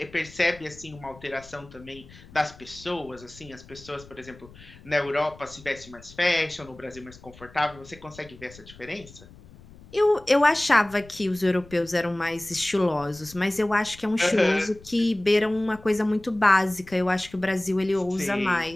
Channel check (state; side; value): noise; left; rumble, 21 dB below the sound